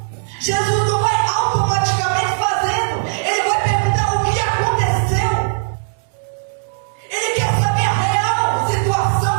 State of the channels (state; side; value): silent; left; 67 dB below the other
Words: Jesus não vai automaticamente fazendo. Ele vai perguntar o que aconteceu. Ele quer saber a real situação